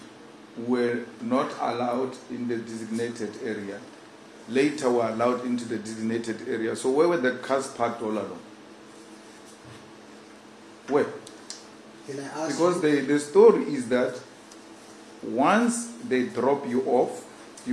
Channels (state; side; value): identical; both; correlation 1.00